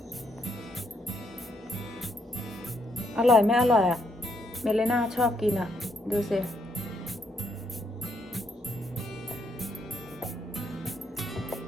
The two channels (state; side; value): normal; both; correlation 0.75